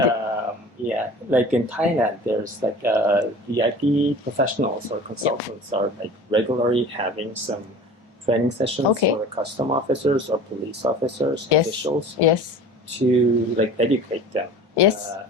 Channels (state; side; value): normal; both; correlation 0.41